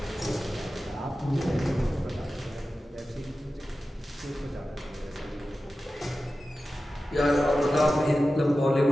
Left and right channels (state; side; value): normal; both; correlation 0.94